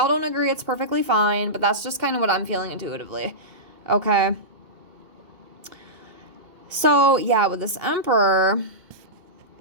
don't agree, it's perfectly fine, but that's just kind of what I'm feeling intuitively. Okay. So, yeah, with this Emperor...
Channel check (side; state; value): left; late; 2.3 ms